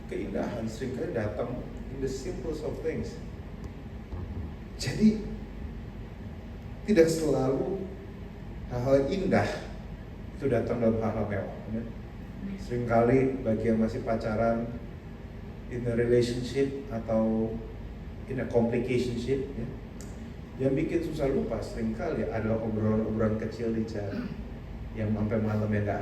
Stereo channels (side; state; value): both; identical; correlation 1.00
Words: keindahan seringkali datang in the simplest of things. Jadi tidak selalu hal-hal indah itu datang dalam hal-hal mewah. Seringkali bagi yang masih pacaran, in a relationship atau in a complicationship, yang bikin susah lupa seringkali adalah obrolan-obrolan kecil di jalan yang sampai malam yang